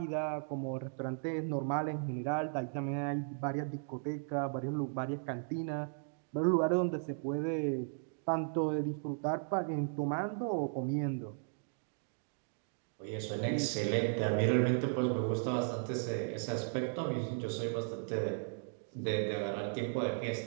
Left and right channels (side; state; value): left; silent; digital silence